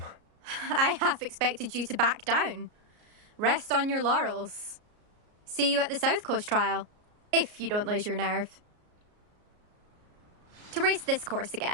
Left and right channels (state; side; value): late; left; 33 ms